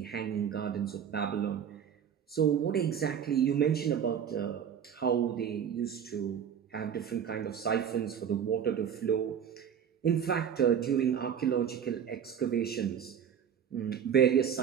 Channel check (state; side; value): quieter; left; 8.3 dB